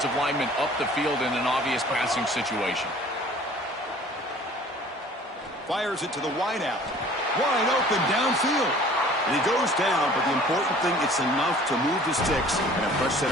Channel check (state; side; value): normal; both; correlation 0.50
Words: linemen up the field in an obvious passing situation. Fires it to the wideout. Wide open downfield. And he goes down, but the important thing, it's enough to move the sticks and a fresh set